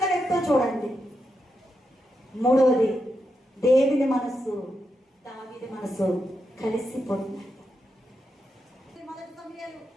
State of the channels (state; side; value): normal; both; correlation 0.85